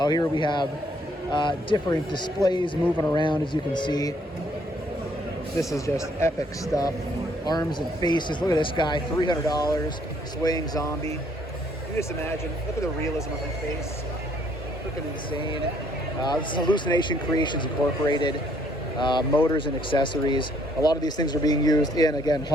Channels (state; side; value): normal; both; correlation 0.66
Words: here we have different displays moving around, as you can see. This is just epic stuff. Arms and faces. Look at this guy, $300, swaying zombie. You just imagine, look at the realism of his face. Freaking insane. This is Hallucination Creations Incorporated. Motors and accessories. A lot of these things are being used in, again,